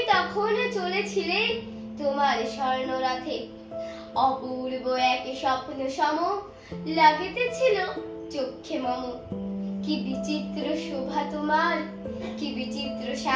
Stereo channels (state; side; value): identical; both; correlation 1.00